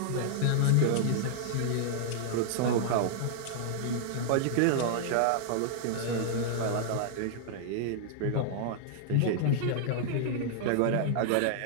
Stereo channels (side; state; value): both; different; correlation -0.01